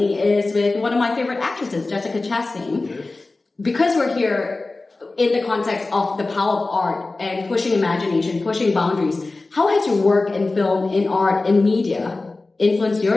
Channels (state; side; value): quieter; right; 3.4 dB